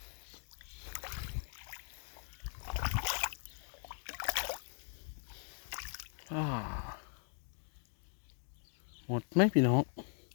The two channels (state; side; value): silent; right; 51 dB below the other